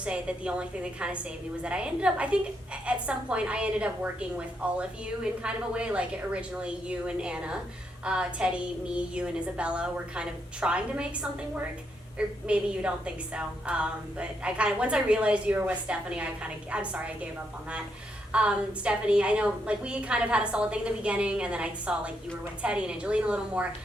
that the only thing that kind of saved me was that I think at some point I ended up working with all of you in kind of a way, like originally you and Anna, Teddy, me, you and Isabella were kind of trying to make something work. Or maybe you don't think so, but I kind of, once I realized you were with Stephanie, I'm sorry I gave up on that. Stephanie, I know, like, we kind of had a solid thing in the beginning, and then I saw, like, you were with Teddy and Angelina a little more.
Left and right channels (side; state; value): both; normal; correlation 0.79